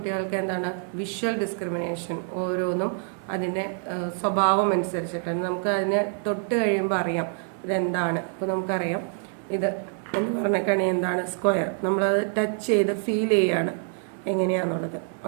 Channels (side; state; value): left; silent; 56 dB below the other